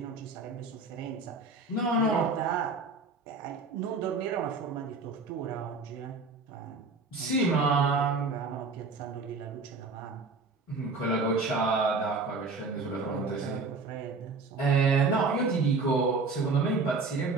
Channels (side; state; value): left; quieter; 4.0 dB